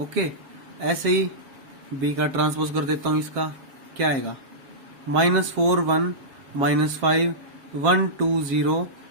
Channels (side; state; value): left; late; 7.4 ms